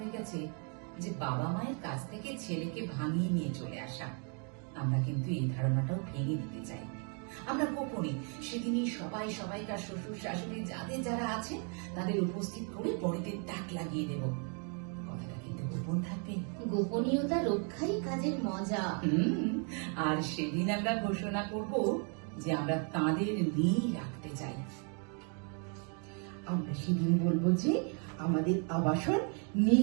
গেছে যে বাবা মায়ের কাছ থেকে ছেলেকে ভাঙিয়ে নিয়ে চলে আসা। আমরা কিন্তু এই ধারণাটাও ভেঙে দিতে চাই। আমরা গোপনে সেদিনই সবাই সবাইকার শ্বশুর শাশুড়ি যাদের যারা আছে তাদের উপস্থিত করে বড়িদের ডাক লাগিয়ে দেব। কথাটা কিন্তু গোপন থাকবে। গোপনীয়তা রক্ষাই কাজের মজা। আর সেদিন আমরা ঘোষণা করব যে আমরা তাদের নিয়েই রাখতে চাই। আমরা সেদিন বলবো যে আমাদের আবাসন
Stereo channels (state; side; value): quieter; left; 39.1 dB